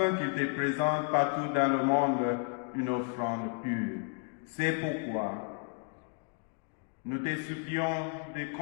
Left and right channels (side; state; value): right; quieter; 39.2 dB